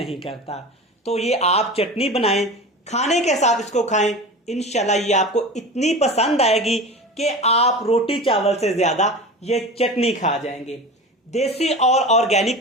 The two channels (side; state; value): both; normal; correlation 0.31